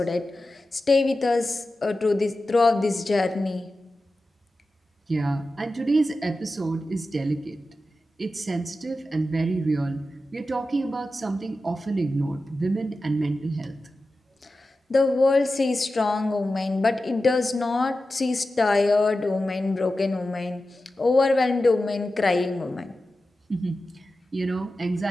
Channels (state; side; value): normal; both; correlation 0.93